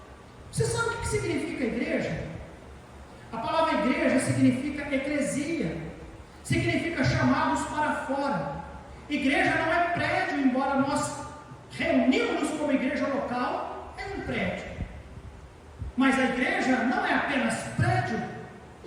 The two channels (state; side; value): identical; both; correlation 1.00